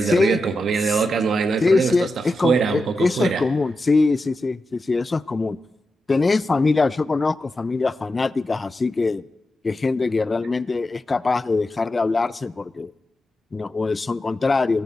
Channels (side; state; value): both; normal; correlation 0.89